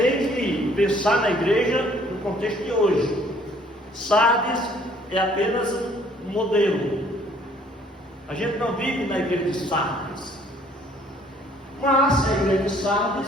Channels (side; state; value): both; normal; correlation 0.59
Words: que pensar na igreja no contexto de hoje. Sardes é apenas um modelo. A gente não vive na igreja de Sardes. Mas a igreja de